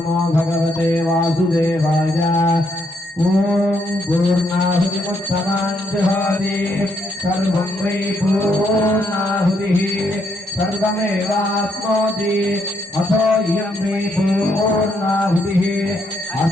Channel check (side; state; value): both; normal; correlation 0.75